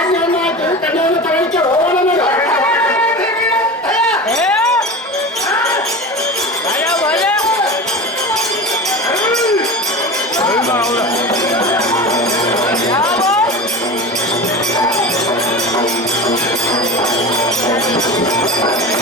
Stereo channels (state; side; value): normal; both; correlation 0.30